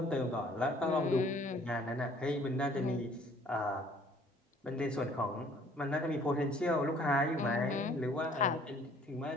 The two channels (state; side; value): normal; both; correlation 0.57